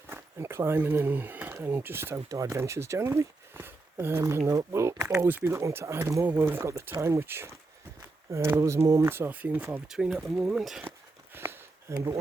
and climbing and just outdoor adventures generally. And we'll always be looking to add more when we've got the time, which those moments are few and far between at the moment. But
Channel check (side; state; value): left; quieter; 3.3 dB